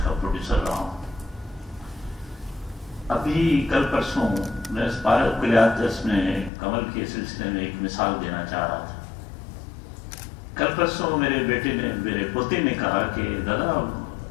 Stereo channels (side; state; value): right; drops out; at 6.5 s